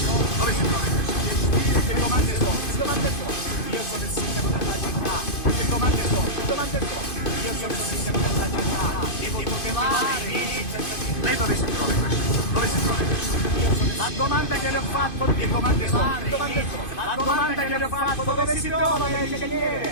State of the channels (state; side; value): late; right; 2.5 ms